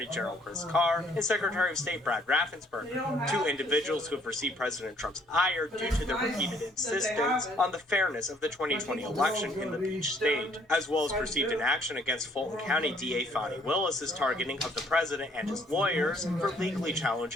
General Chris Carr and Secretary of State Brad Raffensperger, two individuals who have received President Trump's ire due to their repeated insistence on the fairness of the 2020 election in the Peach State, as well as perceived inaction against Fulton County DA Fani Willis's targeting of the president and his lawyers for legally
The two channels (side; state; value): both; normal; correlation 0.63